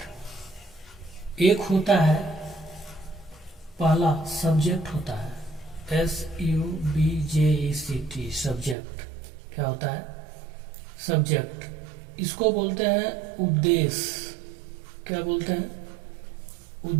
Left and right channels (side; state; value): left; drops out; at 8.8 s